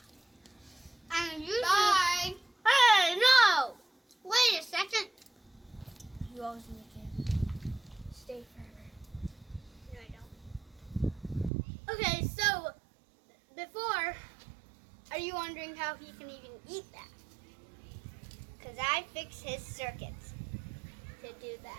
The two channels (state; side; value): drops out; left; at 11.5 s